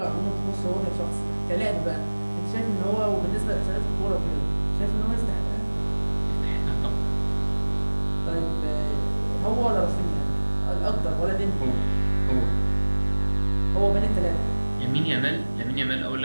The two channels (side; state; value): both; inverted; correlation -1.00